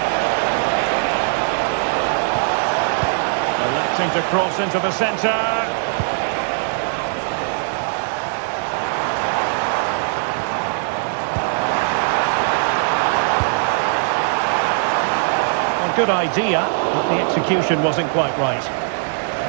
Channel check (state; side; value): silent; left; digital silence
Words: Electing to cross into the centre. Well, good idea, but the execution wasn't quite right.